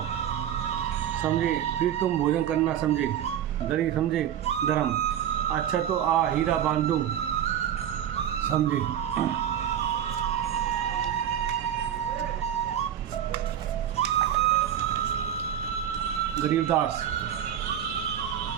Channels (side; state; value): left; quieter; 10.0 dB